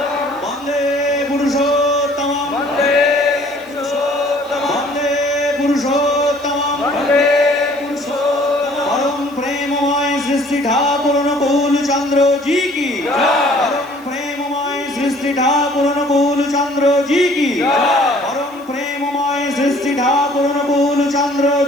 বন্দে পুরুষোত্তম বন্দে পুরুষোত্তম পরম প্রেমময় সৃষ্টি ঠাকুর অনুকূল চন্দ্র জি কি পরম প্রেমময় সৃষ্টি ঠাকুর অনুকূল চন্দ্র জি কি পরম প্রেমময় সৃষ্টি ঠাকুর অনুকূল চন্দ্র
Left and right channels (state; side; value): noise; right; hiss, 26 dB below the sound